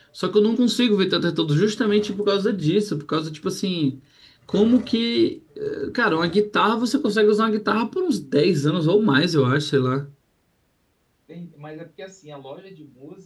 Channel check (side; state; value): both; identical; correlation 1.00